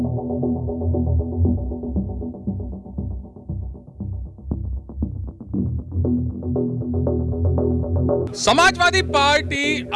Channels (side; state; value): both; identical; correlation 1.00